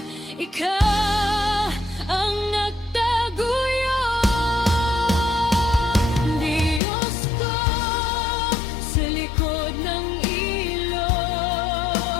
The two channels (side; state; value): right; drops out; at 6.8 s